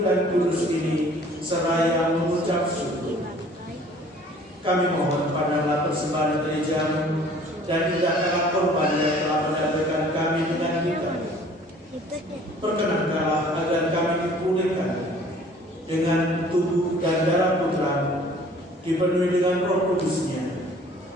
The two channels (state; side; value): normal; both; correlation 0.52